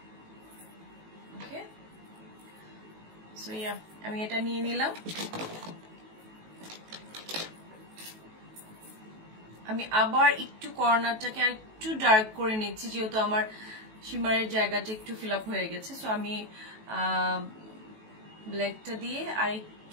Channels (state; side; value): late; left; 18 ms